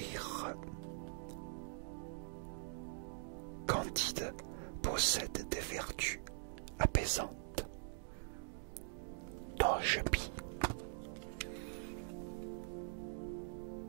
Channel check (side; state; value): left; silent; digital silence